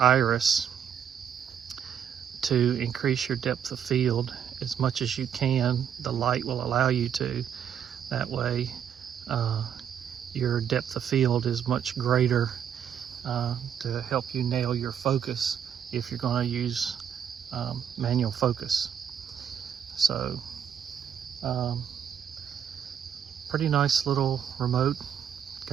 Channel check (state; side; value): quieter; left; 8.6 dB